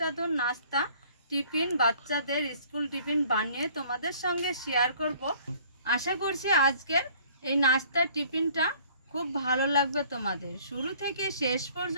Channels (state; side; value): inverted; both; correlation -0.55